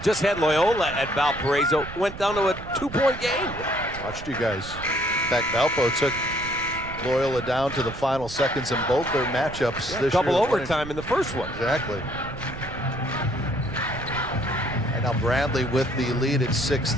just had Loyola at Valparaiso. Went down to a 2-point game. Watched you guys. In fact, Valpo took Loyola down to the final seconds in both their matchups. Yeah, double overtime in the first one. Exactly. And now Bradley with the lead at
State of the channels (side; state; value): right; noise; rumble, 12 dB below the sound